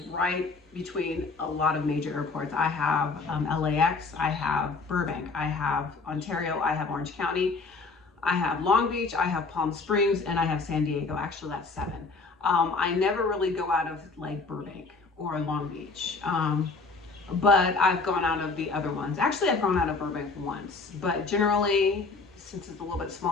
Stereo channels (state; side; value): quieter; right; 4.1 dB